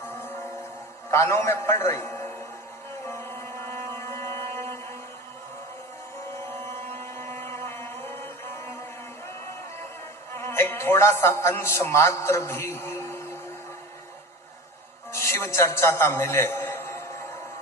कानों में पड़ रही। एक थोड़ा सा अंश मात्र भी शिव चर्चा का मिले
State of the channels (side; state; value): both; normal; correlation 0.32